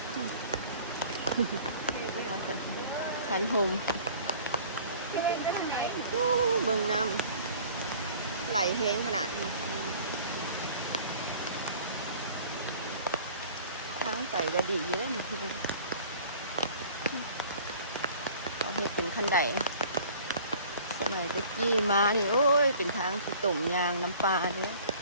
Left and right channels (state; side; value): inverted; both; correlation -0.48